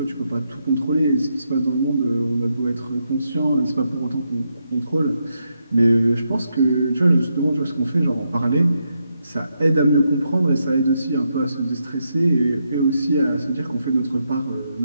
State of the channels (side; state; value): both; inverted; correlation -0.82